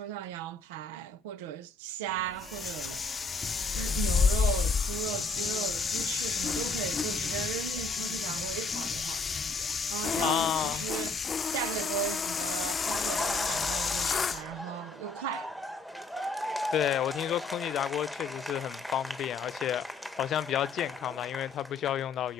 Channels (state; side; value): quieter; right; 3.6 dB